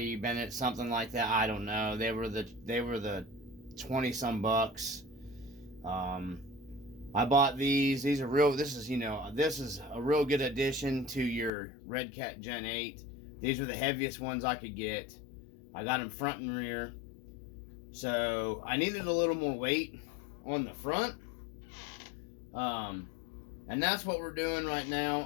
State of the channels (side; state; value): right; drops out; at 11.5 s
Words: something like that. I don't know. They were the 20 some bucks. I bought these. These are real. This is a real good addition to your Red Gen 8. These were the heaviest ones I could get. I got them front and rear. So I needed a little more weight on the front. And that's what we're doing right now.